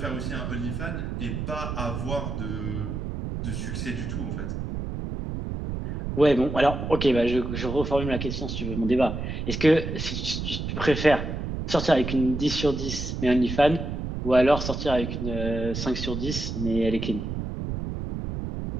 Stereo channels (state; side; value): noise; right; rumble, 4 dB below the sound